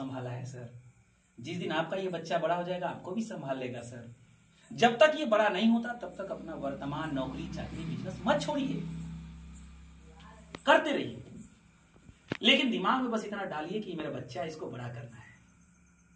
है सर। जिस दिन आपका ये बच्चा बड़ा हो जाएगा आपको भी संभाल लेगा सर। जब तक ये बड़ा नहीं होता तब तक अपना वर्तमान नौकरी चाकरी बिजनेस मत छोड़िए, करते रहिए, लेकिन दिमाग में बस इतना डालिए कि मेरा बच्चा, इसको बड़ा करना है।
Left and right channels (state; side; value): identical; both; correlation 1.00